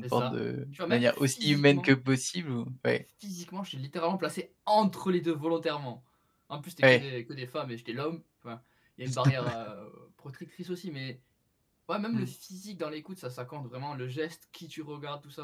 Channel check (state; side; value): identical; both; correlation 1.00